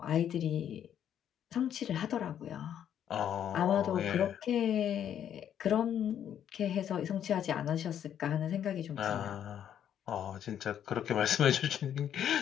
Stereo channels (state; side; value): quieter; right; 9.7 dB